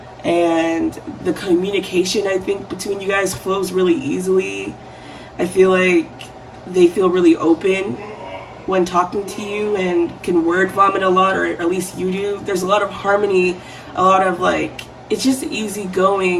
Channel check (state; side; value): identical; both; correlation 1.00